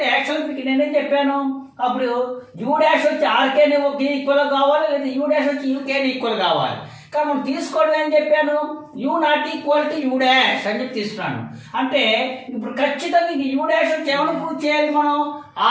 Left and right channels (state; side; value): identical; both; correlation 1.00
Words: యాక్చువల్గా మీకు నేనేం చెప్పాను? అప్పుడు U dash వచ్చి RK ఈక్వల్ కావాలి, లేదా U dash వచ్చి UK ఈక్వల్ కావాలి. కానీ మనం తీసుకోవడం ఏం చెప్పాను? U not equal to U dash అని చెప్పి తీసుకున్నాను. అంటే ఇప్పుడు ఖచ్చితంగా U డాష్ వచ్చి ఏమైనా ప్రూవ్ చేయాలి? మనం